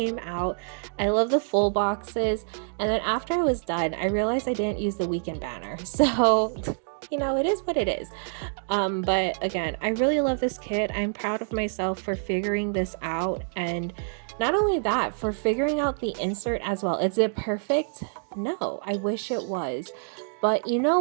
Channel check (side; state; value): left; silent; 60 dB below the other